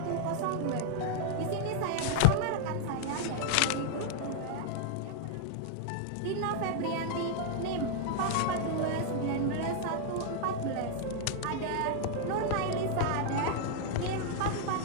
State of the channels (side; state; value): both; different; correlation 0.00